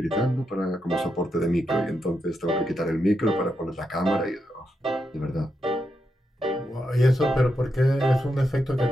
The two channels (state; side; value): normal; both; correlation 0.84